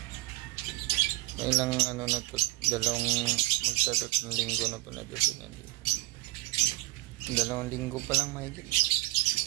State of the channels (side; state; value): left; quieter; 20.0 dB